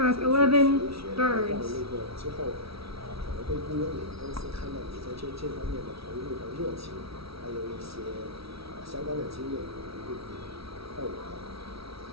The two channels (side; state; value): left; late; 0.76 ms